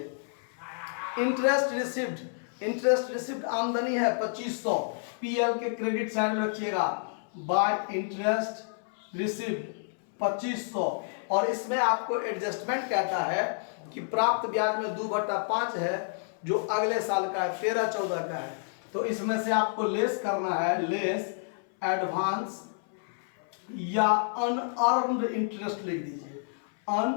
इंटरेस्ट रिसिप्ट आमदनी है 2500, पीएल के क्रेडिट साइड में रखिएगा, बाय इंटरेस्ट रिसिप्ट 2500। और इसमें आपको एडजस्टमेंट कहता है कि प्राप्त ब्याज में 2/5 है, जो अगले साल का है, 13-14 का है। तो इसमें से आपको लेस करना है, लेस एडवांस या अनअर्न्ड इंटरेस्ट लिख दीजिए,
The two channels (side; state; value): right; silent; 58 dB below the other